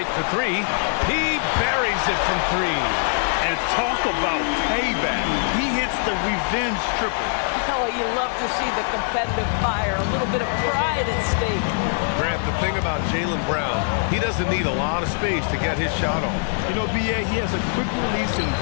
for 3. He buries it from 3. And talk about payback. He hits the revenge triple. Oh, you love to see the competitive fire. A little bit of pride at stake. Grant, the thing about Jaylen Brown, he doesn't need a lot of space to get his shot off. You know, B.A., he has a quick release and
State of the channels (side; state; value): right; silent; 57 dB below the other